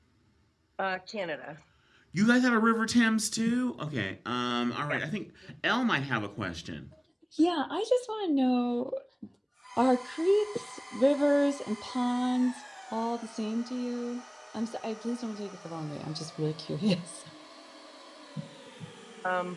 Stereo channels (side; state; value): both; identical; correlation 1.00